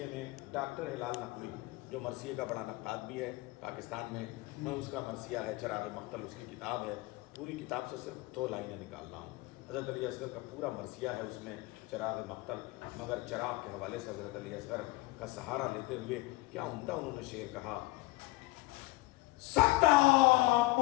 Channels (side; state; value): right; quieter; 21.8 dB